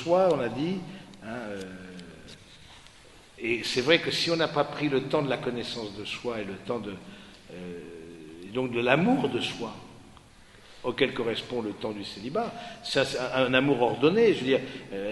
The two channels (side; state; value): both; identical; correlation 1.00